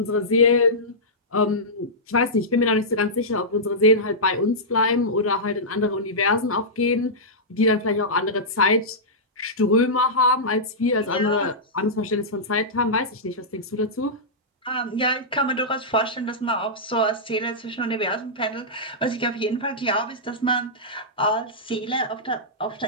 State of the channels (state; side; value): normal; both; correlation -0.13